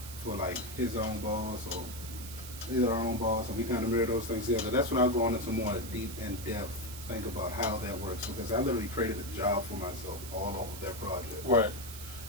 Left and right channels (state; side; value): noise; right; hiss, 12 dB below the sound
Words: for like his own boss or our own boss, and we kind of mirror those things together, that's when I'll go on into more deep and depth think about how that works, because I literally created a job for myself all over that project. Right.